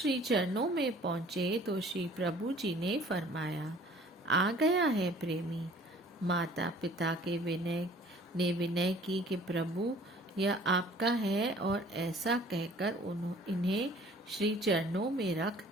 चरणों में पहुंचे तो श्री प्रभु जी ने फरमाया, आ गया है प्रेमी। माता पिता के विनय की कि प्रभु यह आपका है, और ऐसा कहकर इन्हें श्री चरणों में रख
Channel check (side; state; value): both; normal; correlation 0.52